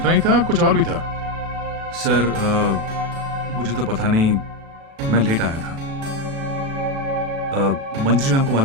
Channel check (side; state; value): left; late; 36 ms